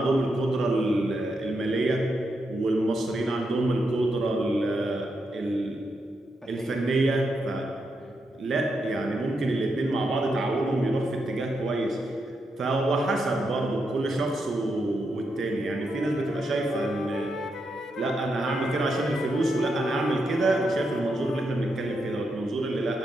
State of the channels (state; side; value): normal; both; correlation 0.83